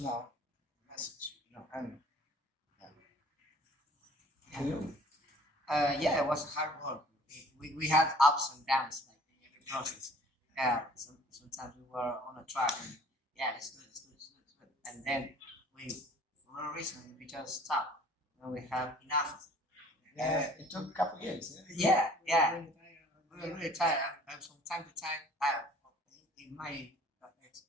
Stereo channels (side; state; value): both; normal; correlation 0.53